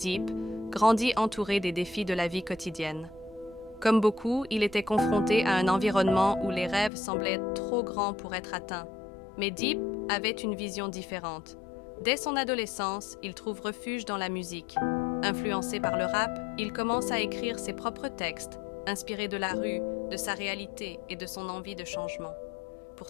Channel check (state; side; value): drops out; right; at 6.9 s